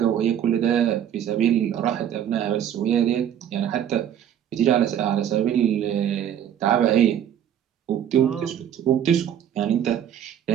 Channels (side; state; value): left; quieter; 9.8 dB